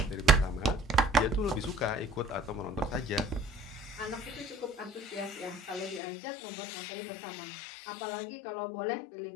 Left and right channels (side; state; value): right; drops out; at 6.0 s